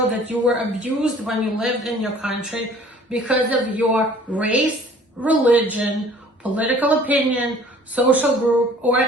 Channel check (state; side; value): normal; both; correlation 0.52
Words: that you were abused when you lived in your country because of your race, religion, political opinion, social group, or